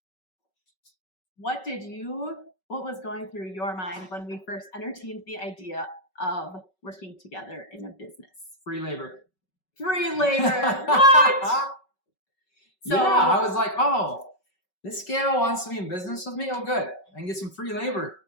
what was going through your mind when we first entertained the idea of working together in a business? Free labor. Free labor. What? So, yeah, I was like, oh, this gal wants to be in business with me? Oh, good. I can get some free labor.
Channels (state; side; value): late; right; 5.3 ms